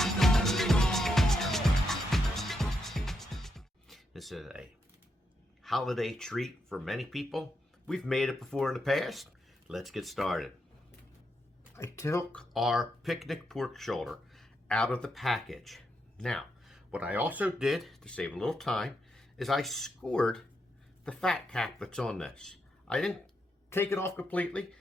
This is a holiday treat for many people. We've made it before in the past. Let's get started. I took our picnic pork shoulder out of the package. Now, what I also did to save a little time is I scored the fat cap that's on this. I didn't take it off completely.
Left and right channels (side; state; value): both; normal; correlation 0.82